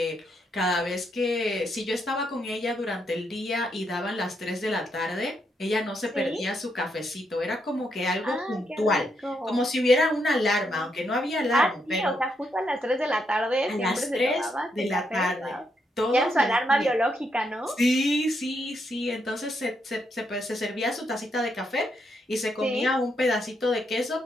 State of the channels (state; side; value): normal; both; correlation 0.79